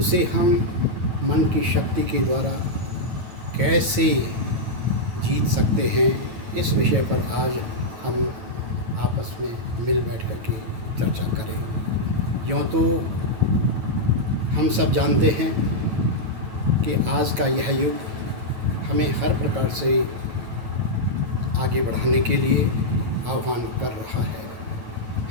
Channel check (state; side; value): late; left; 9.2 ms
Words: हम मन की शक्ति के द्वारा कैसे जीत सकते हैं, इस विषय पर आज हम आपस में मिल बैठ कर के चर्चा करें। यूँ तो हम सब जानते हैं कि आज का यह युग हमें हर प्रकार से आगे बढ़ाने के लिए आह्वान कर रहा है।